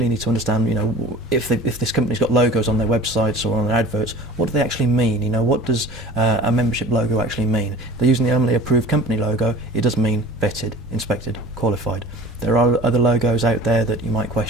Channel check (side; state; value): both; normal; correlation 0.42